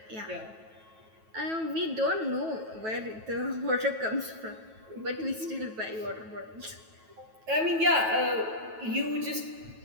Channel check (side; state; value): left; late; 9.2 ms